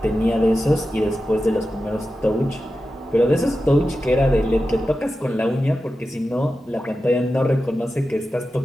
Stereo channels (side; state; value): both; normal; correlation 0.92